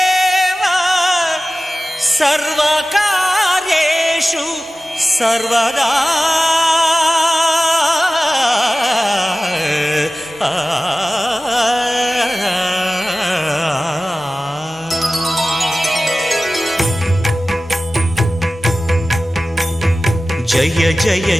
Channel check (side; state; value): both; normal; correlation 0.96